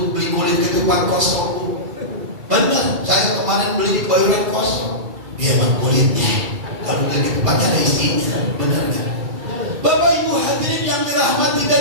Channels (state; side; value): late; left; 2.3 ms